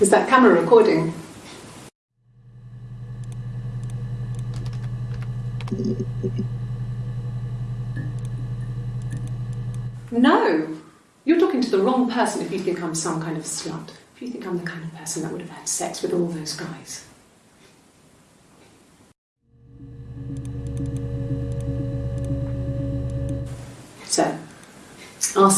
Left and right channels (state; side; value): identical; both; correlation 1.00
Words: that camera recording? No! You're talking to the wrong person if you think I'm some kind of slut. If you think I'm the kind of person that would have had sex with all those guys. So, our